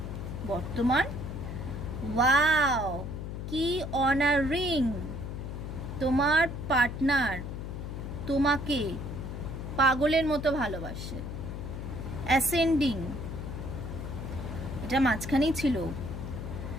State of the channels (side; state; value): left; noise; hum, 6 dB below the sound